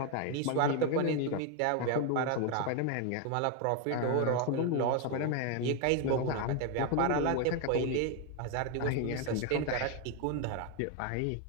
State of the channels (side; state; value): both; different; correlation 0.01